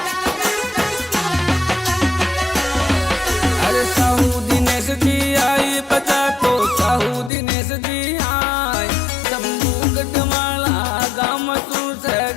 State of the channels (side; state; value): right; drops out; at 7.3 s